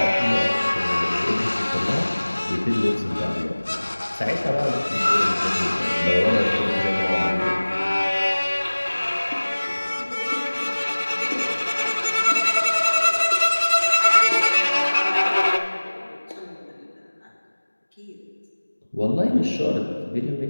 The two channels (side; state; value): both; inverted; correlation -1.00